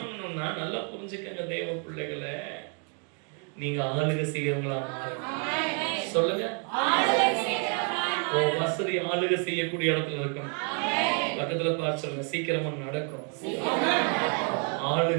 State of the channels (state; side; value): quieter; left; 38.4 dB